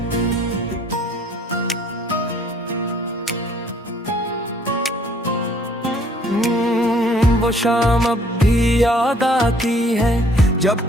वो शाम अब भी याद आती है जब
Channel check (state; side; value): normal; both; correlation 0.60